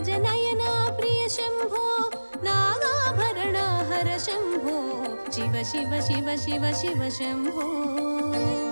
నయన ప్రియ శంభో నాగాభరణ హర శంభో శివ శివ శివ శివ శివ శంభో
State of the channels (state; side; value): inverted; both; correlation -1.00